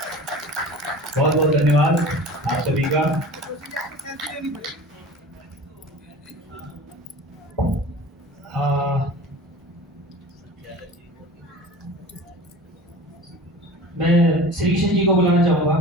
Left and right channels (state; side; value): normal; both; correlation 0.39